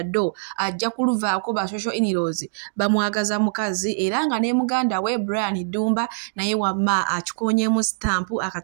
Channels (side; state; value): left; silent; digital silence